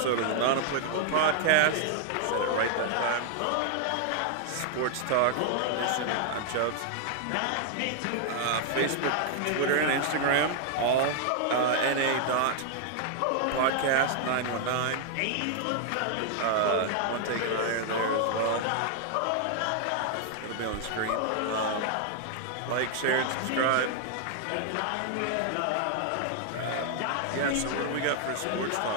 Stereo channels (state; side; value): different; both; correlation 0.00